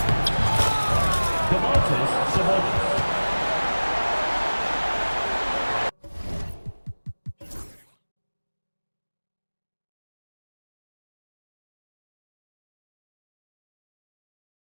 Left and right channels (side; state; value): both; inverted; correlation -1.00